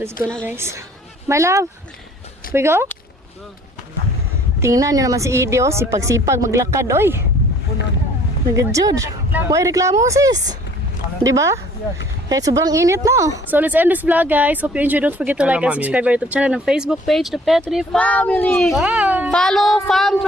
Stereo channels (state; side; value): normal; both; correlation 0.55